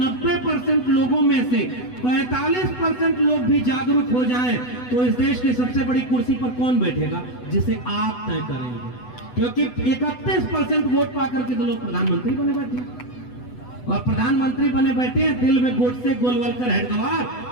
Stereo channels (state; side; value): late; right; 8.0 ms